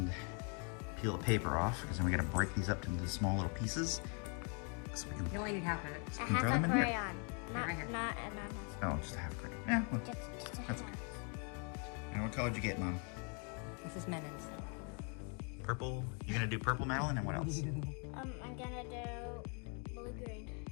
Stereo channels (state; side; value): quieter; right; 37.8 dB